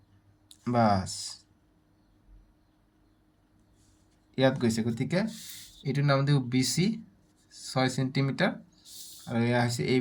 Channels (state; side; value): identical; both; correlation 1.00